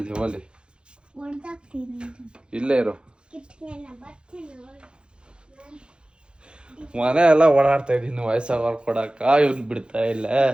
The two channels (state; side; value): late; left; 0.053 ms